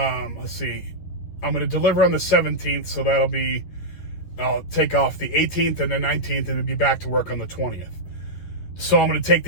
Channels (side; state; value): right; late; 11 ms